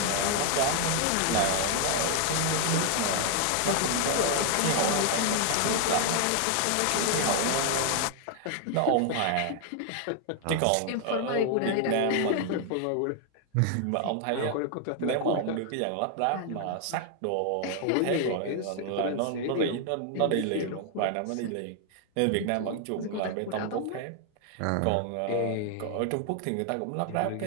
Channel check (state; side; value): different; both; correlation 0.00